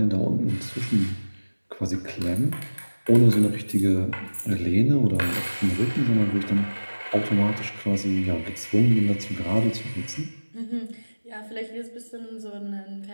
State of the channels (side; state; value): both; inverted; correlation -1.00